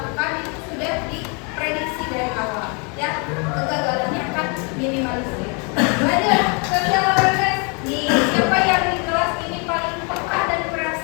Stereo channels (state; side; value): quieter; right; 34.8 dB